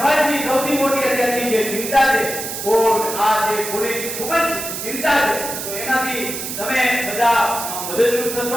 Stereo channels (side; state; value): right; noise; hiss, 6 dB below the sound